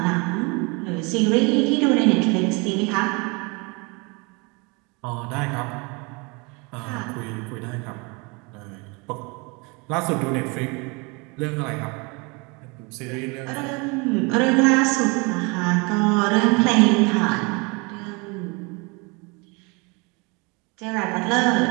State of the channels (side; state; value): left; quieter; 29.2 dB